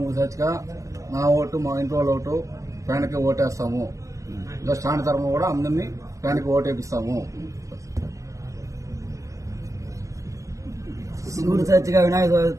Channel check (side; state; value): left; late; 0.15 ms